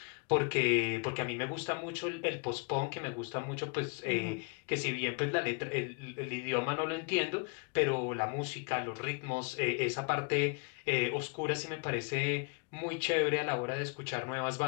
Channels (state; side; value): quieter; right; 34.5 dB